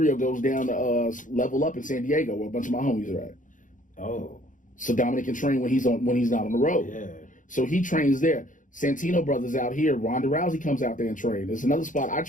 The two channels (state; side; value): late; right; 0.38 ms